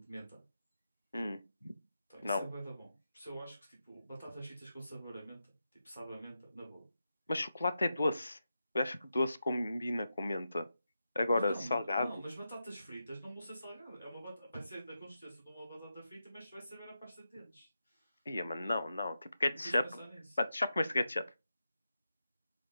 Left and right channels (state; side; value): inverted; both; correlation -0.88